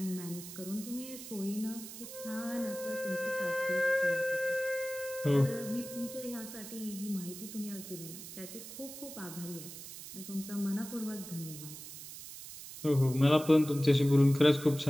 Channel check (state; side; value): noise; right; hiss, 12 dB below the sound